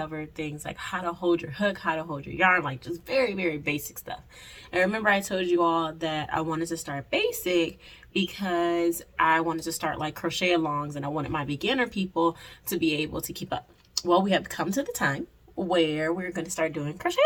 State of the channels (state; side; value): identical; both; correlation 1.00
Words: things like how to hold your hook, how to hold your yarn, like just very basic stuff. And remember I told you all that I wanted to start basic because I wanted to start like crochet alongs and I wanted my beginner people to be able to keep up. Well, we have come to the time where we're going to start doing crochet